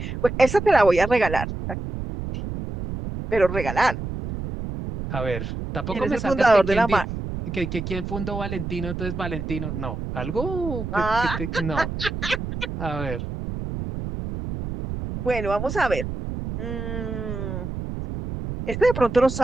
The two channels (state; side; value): noise; right; rumble, 6 dB below the sound